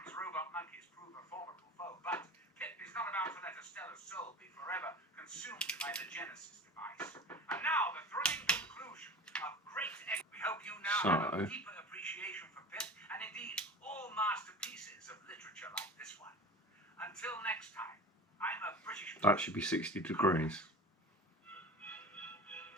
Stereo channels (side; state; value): both; normal; correlation 0.35